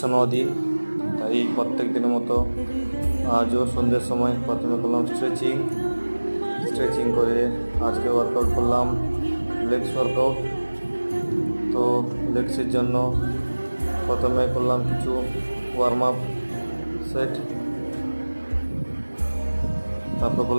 দিন। তাই প্রত্যেক দিনের মতো আজও সন্ধ্যের সময় প্রথমে করলাম স্ট্রেচিং করে আজকে ওয়ার্কআউট করলাম লেগস ওয়ার্কআউট। তো লেগসের জন্য প্রথমে করলাম কিছু ওয়ার্ম আপ সেট, তারপর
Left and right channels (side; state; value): both; inverted; correlation -1.00